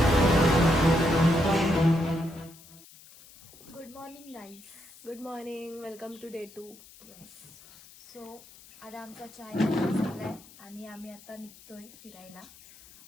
good morning guys good morning welcome to day 2 so आता आमचा चाय झालाय आणि आम्ही आता निघतोय फिरायला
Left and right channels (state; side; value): noise; left; hiss, 22 dB below the sound